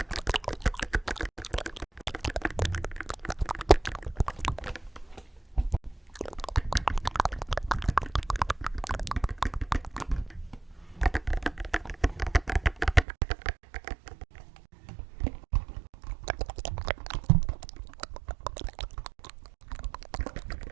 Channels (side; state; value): left; drops out; at 13.1 s